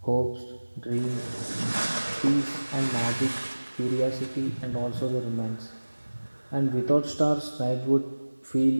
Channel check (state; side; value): inverted; both; correlation -1.00